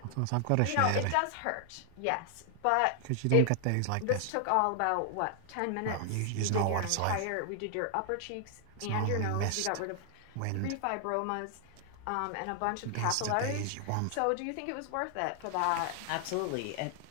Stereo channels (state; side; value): different; both; correlation 0.00